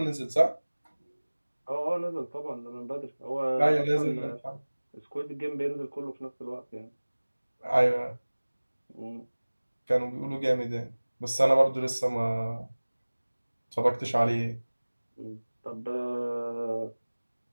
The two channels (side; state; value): both; inverted; correlation -1.00